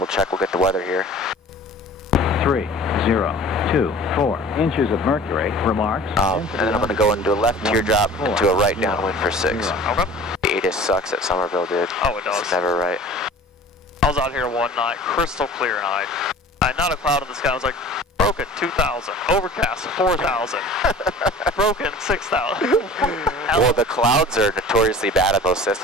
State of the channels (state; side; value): normal; both; correlation 0.43